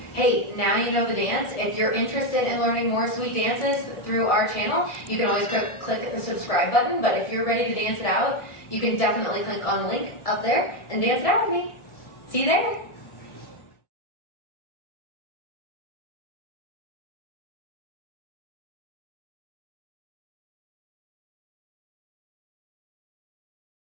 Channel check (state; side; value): late; right; 1.4 ms